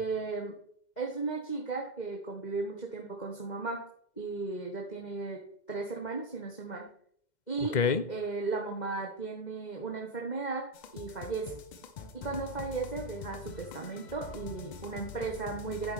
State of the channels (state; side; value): late; right; 2.1 ms